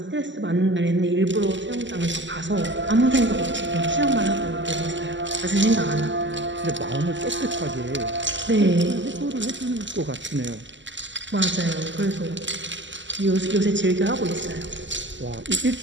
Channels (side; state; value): left; late; 0.54 ms